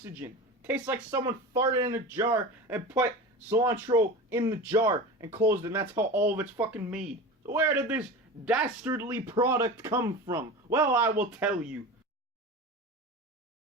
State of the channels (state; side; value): normal; both; correlation 0.30